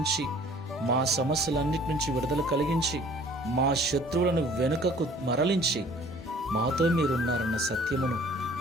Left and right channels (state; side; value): normal; both; correlation 0.52